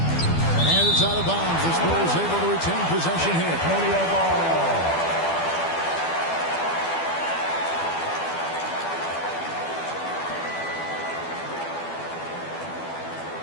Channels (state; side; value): late; right; 12 ms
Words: And it's out of bounds. The Spurs able to retain possession here.